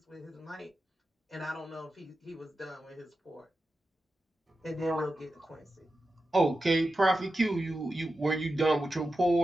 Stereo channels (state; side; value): normal; both; correlation 0.91